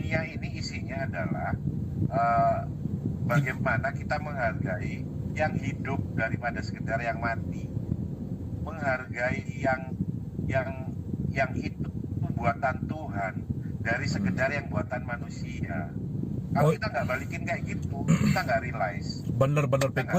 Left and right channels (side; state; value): both; identical; correlation 1.00